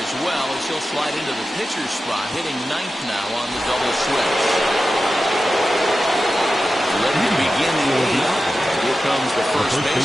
well, as he'll slide into the pitcher's spot, hitting 9th now on the double switch. Ready to begin the 8th. Here comes the first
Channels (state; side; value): normal; both; correlation 0.93